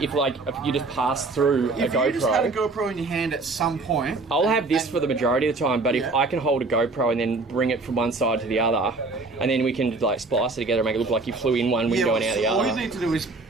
just pass through a GoPro. If you just had a GoPro in your hand at some point... I'll have this for the majority of the time, but if I can hold a GoPro and then bring it from one side to the other, and then we can, like, splice it together and make it look like you flew in one window and out the other. All you need to do is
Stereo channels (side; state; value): left; quieter; 3.5 dB